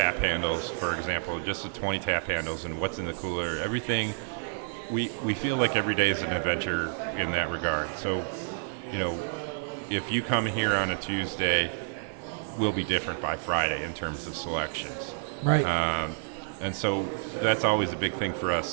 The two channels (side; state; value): left; silent; 58 dB below the other